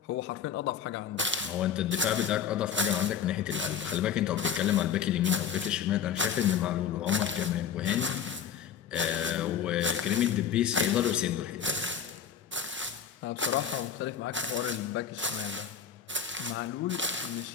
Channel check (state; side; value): quieter; right; 7.8 dB